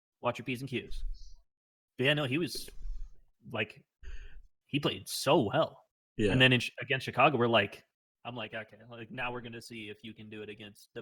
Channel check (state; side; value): identical; both; correlation 1.00